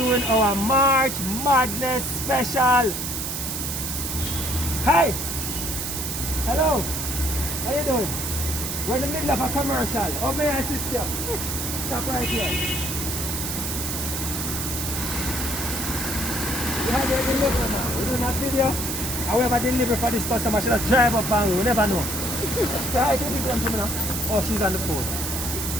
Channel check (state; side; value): noise; right; hiss, 3 dB below the sound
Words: our March Madness special. Hi. Hello. How you doing? We're in the middle of a commercial. Oh, may I assist you? Stop right here. We have your delivery now. We're doing a video. However, delivery for this customer, she just drive up and we never know. So I think people to me now. Oh, she's on the phone.